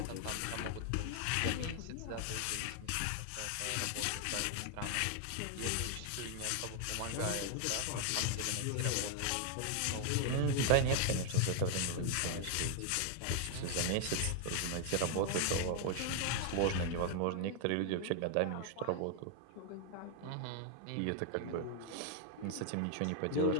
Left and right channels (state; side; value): different; both; correlation 0.00